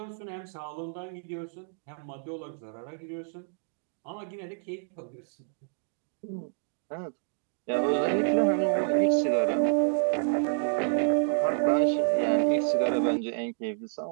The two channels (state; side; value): silent; left; digital silence